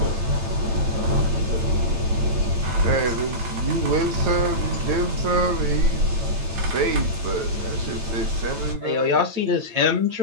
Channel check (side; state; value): left; late; 9.0 ms